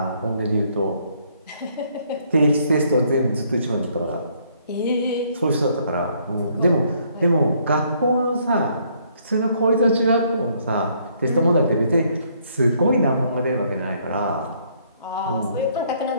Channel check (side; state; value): both; inverted; correlation -0.67